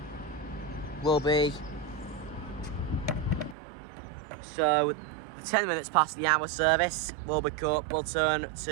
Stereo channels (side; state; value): left; drops out; at 3.6 s